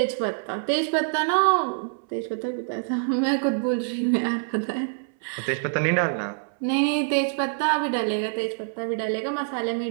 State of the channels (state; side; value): silent; left; 61 dB below the other